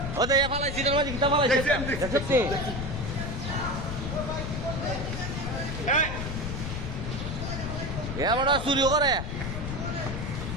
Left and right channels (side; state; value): left; noise; rumble, 4 dB below the sound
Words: ও দেখে ফালাইছি তোর মাঝে কিটা ফালাইছে দেখছিস এমন চুরিও করে